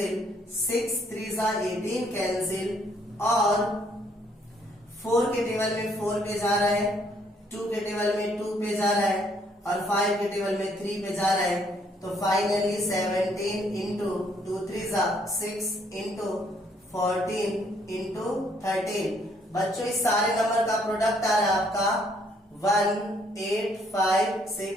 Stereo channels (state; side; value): normal; both; correlation 0.67